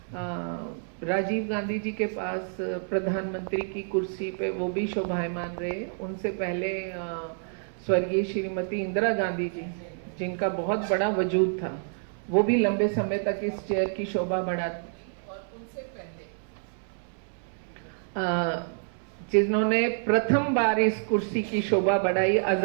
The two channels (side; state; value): left; silent; 59 dB below the other